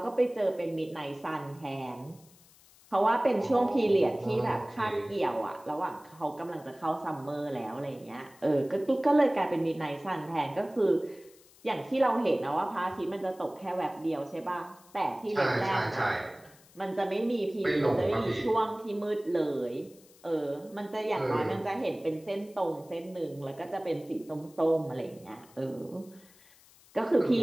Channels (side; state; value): left; noise; hiss, 26 dB below the sound